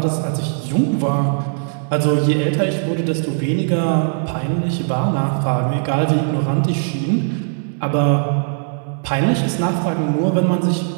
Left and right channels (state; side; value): silent; left; 66 dB below the other